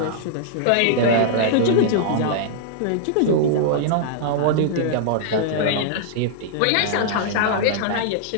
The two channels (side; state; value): both; different; correlation -0.01